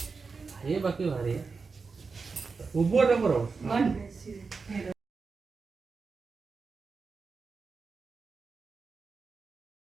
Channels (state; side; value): quieter; left; 4.7 dB